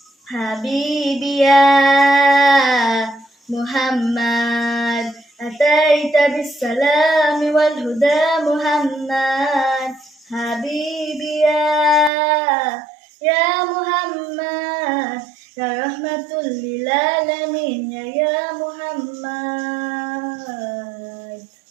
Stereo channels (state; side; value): drops out; left; at 12.1 s